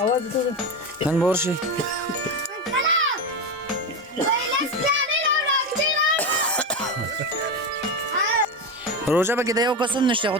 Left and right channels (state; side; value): normal; both; correlation 0.16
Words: نن بورشي روزه به کې د یو قسم نشته خو